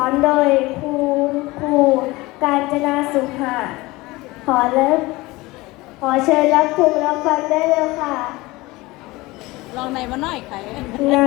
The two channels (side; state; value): right; quieter; 21.1 dB